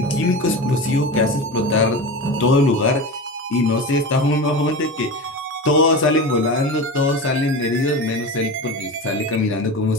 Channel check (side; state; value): both; normal; correlation 0.27